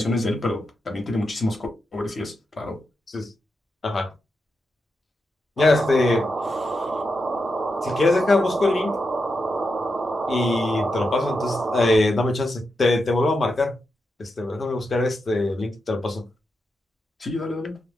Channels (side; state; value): both; normal; correlation 0.86